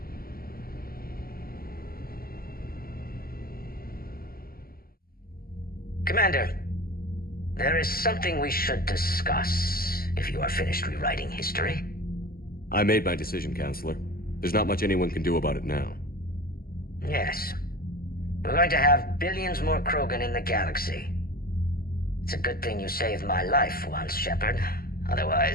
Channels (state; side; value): late; right; 0.43 ms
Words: Commander, there is something we should discuss, if you are finished rewriting history. I made my decision, Counselor. There's not much anyone can do about it now. Yes. We're going to have billions more Krogan in the galaxy. It's a good thing you saved my life once, Shepard.